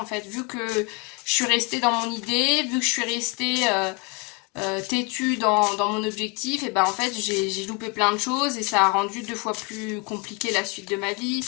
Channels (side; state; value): right; quieter; 29.1 dB